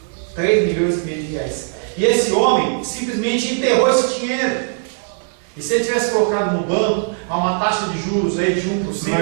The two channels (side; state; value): left; silent; digital silence